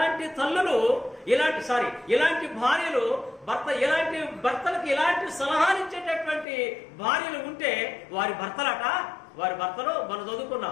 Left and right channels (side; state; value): right; drops out; at 6.5 s